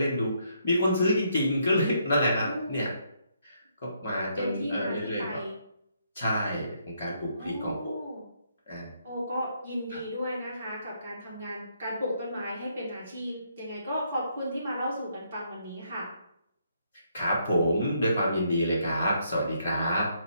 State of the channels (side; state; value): both; inverted; correlation -0.73